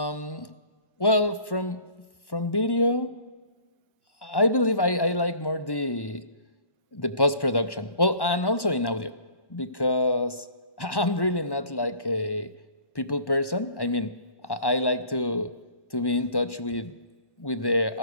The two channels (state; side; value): late; right; 1.1 ms